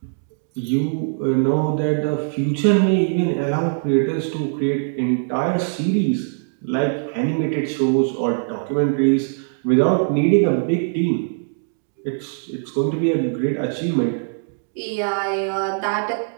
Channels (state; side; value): silent; left; digital silence